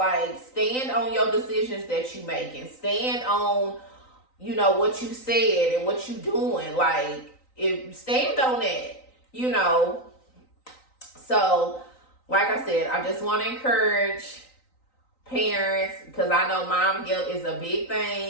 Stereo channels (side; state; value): right; late; 3.9 ms